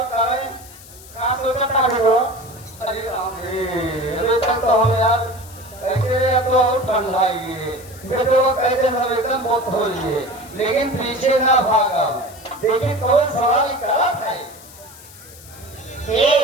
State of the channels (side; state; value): left; noise; hiss, 19 dB below the sound